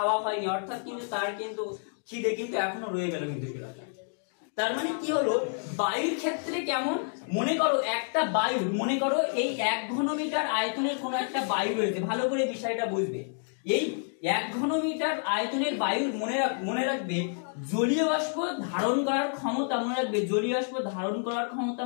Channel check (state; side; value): silent; right; 58 dB below the other